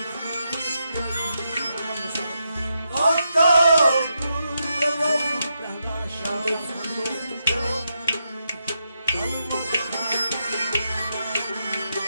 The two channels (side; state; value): both; inverted; correlation -0.84